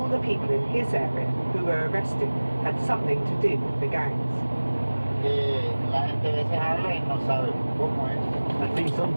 the people in his area who were arrested had something to do with the gangs. La gente a veces habla y no sabe cómo es. I think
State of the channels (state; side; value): inverted; both; correlation -1.00